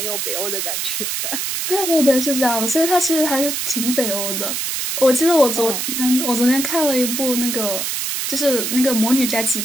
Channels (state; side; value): noise; right; hiss, 2 dB below the sound